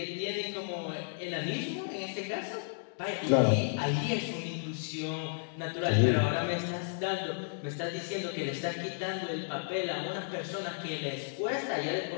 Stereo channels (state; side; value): silent; right; digital silence